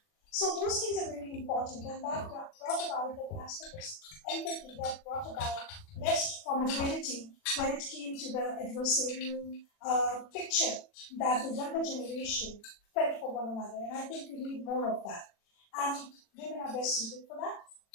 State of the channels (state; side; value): late; right; 40 ms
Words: So those things are very important, and that brought about that aspect of empathy, that brought about less formidability when it came to the adversarial picture that the younger generation felt for one another. And I think we need more of that. And women are best suited for that.